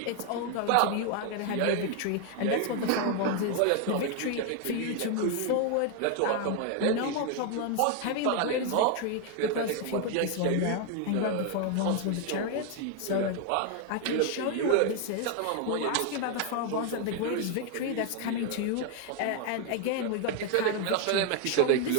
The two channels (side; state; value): both; different; correlation 0.00